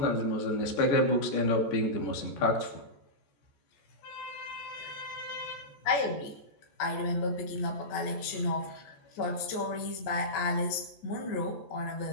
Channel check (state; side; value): late; right; 14 ms